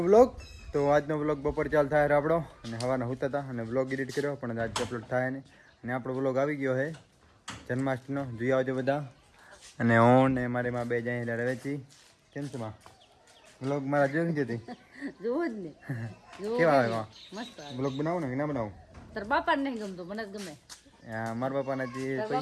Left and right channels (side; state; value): both; identical; correlation 1.00